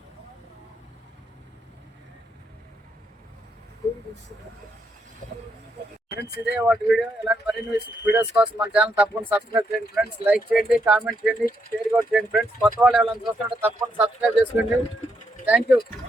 ఫ్రెండ్స్ ఇదే వాటి వీడియో. ఇలాంటి మరిన్ని వీడియోస్ కోసం మన ఛానల్ తప్పకుండా సబ్స్క్రైబ్ చేయండి ఫ్రెండ్స్. లైక్ చేయండి, కామెంట్ చేయండి, షేర్ కూడా చేయండి ఫ్రెండ్స్. కొత్త వాళ్ళు ఎవరైనా చూస్తుంటే తప్పకుండా సబ్స్క్రైబ్ చేసుకోండి. Thank you.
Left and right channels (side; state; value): both; normal; correlation 0.78